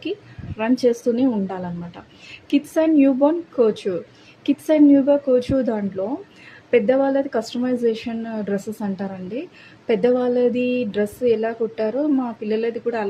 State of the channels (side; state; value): both; identical; correlation 1.00